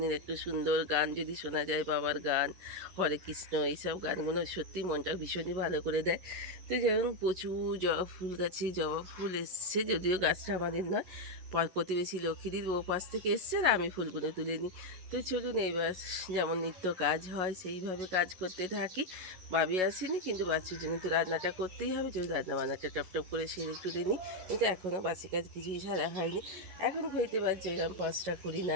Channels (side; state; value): left; late; 11 ms